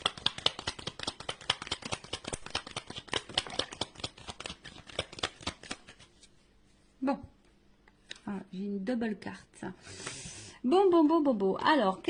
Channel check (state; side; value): identical; both; correlation 1.00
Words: Bon, ah, j'ai une double carte. Bon. Alors,